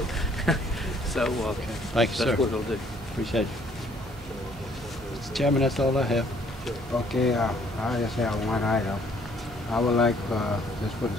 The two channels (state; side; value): noise; right; hum, 16 dB below the sound